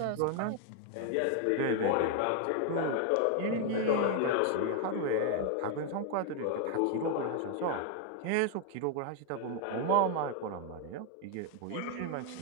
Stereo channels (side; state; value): both; different; correlation 0.00